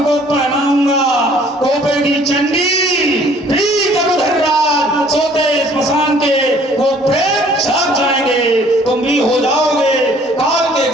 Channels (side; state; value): both; normal; correlation 0.57